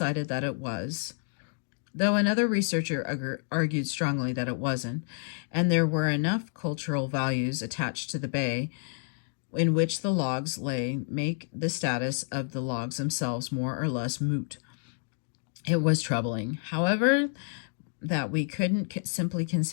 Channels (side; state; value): right; silent; digital silence